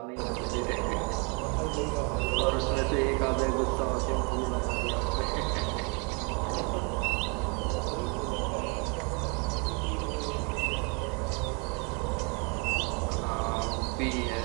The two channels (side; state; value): left; quieter; 34.0 dB